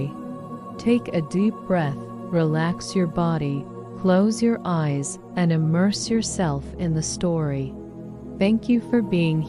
Take a deep breath, relax your body, close your eyes, and immerse yourself in the story. Thank you for being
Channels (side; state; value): both; identical; correlation 1.00